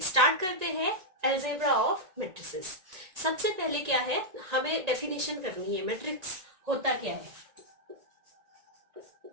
स्टार्ट करते हैं अलजेब्रा ऑफ मैट्रिसेस। सबसे पहले क्या है, हमें डेफिनेशन करनी है मैट्रिक्स होता क्या है।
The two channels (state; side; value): late; left; 1.9 ms